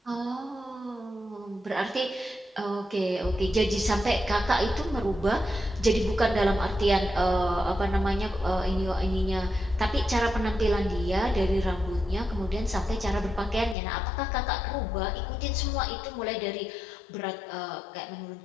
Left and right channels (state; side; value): drops out; right; at 13.8 s